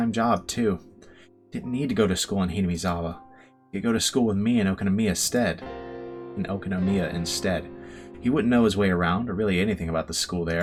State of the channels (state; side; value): identical; both; correlation 1.00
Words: job, too. He didn't need to go to school in Hinamizawa. He could go to school with me in Okunomiya instead. He wouldn't know his way around, or really anything about the school